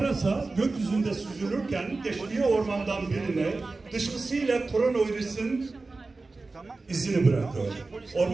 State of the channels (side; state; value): left; quieter; 3.6 dB